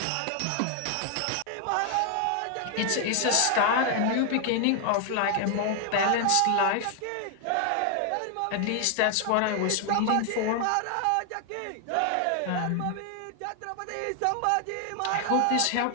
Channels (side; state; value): both; different; correlation 0.00